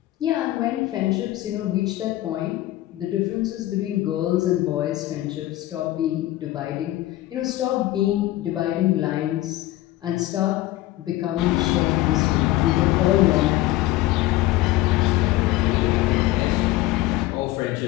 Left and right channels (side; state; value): right; quieter; 16.1 dB